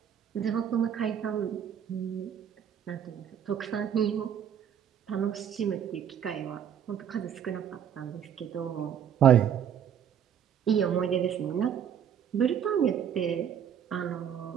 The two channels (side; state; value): left; quieter; 8.8 dB